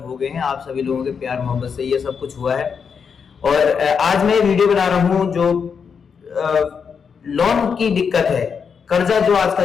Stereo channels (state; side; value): quieter; right; 6.3 dB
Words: गए हैं। आप सभी लोगों के प्यार मोहब्बत से ये सब कुछ हुआ है। और आज मैं वीडियो बना रहा हूँ जो लोन की दिक्कत है, कर्जा जो